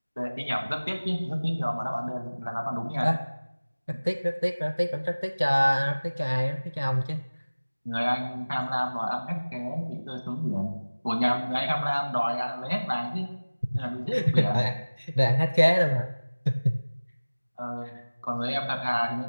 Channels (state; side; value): inverted; both; correlation -1.00